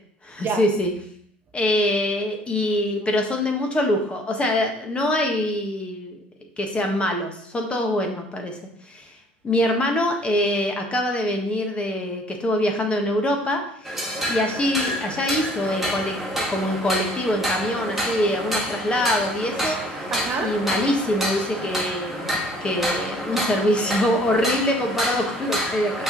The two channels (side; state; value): both; normal; correlation 0.57